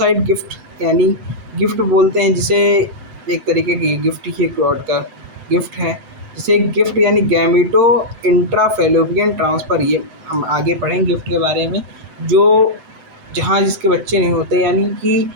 गिफ्ट, यानी गिफ्ट बोलते हैं जिसे, एक तरीके की गिफ्ट ही गॉड का गिफ्ट है, जिसे गिफ्ट यानी गैमिटो इंट्राफेलोपियन ट्रांसफ़र। ये हम आगे पढ़ेंगे गिफ्ट के बारे में, जो जहाँ जिसके बच्चे नहीं होते, यानी कि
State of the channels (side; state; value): left; late; 7.9 ms